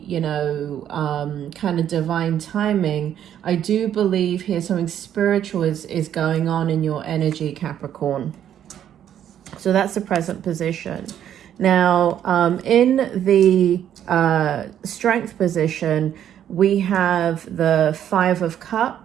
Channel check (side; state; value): left; quieter; 10.2 dB